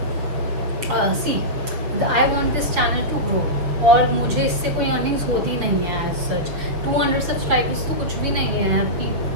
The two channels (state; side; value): late; left; 6.7 ms